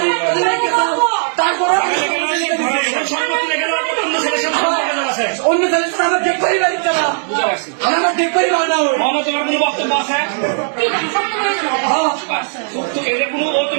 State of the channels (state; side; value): silent; left; digital silence